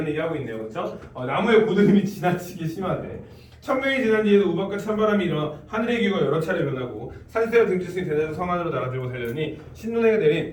얘기하고 있네요, 그렇죠? 나무의 고드름이 지나치게 심하대. 천명이 지난 뒤에도 우박과 찬바람이 일어나 하늘의 기후가 여러 차례 변하고 산새와 등지승이 대대로 성 안으로 나가들고 달려니 신눈에게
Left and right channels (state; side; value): identical; both; correlation 1.00